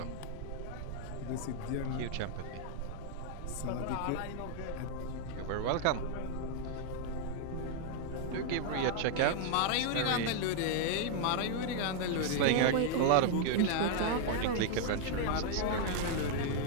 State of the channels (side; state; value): both; different; correlation 0.00